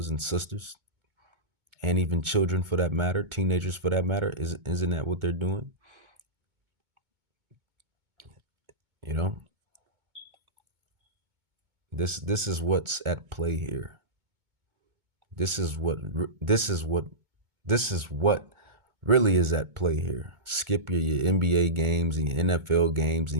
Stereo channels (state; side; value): late; left; 2.2 ms